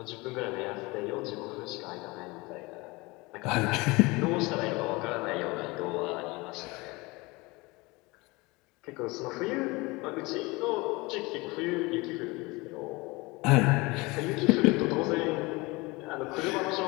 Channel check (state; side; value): quieter; right; 24.1 dB